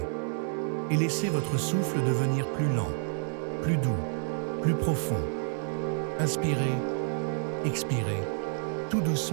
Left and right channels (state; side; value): silent; left; 58 dB below the other